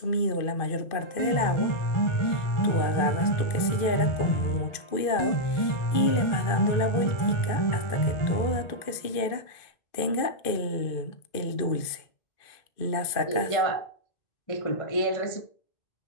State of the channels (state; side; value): late; right; 2.5 ms